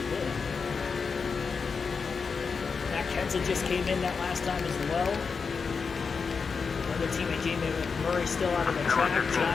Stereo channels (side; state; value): right; quieter; 5.3 dB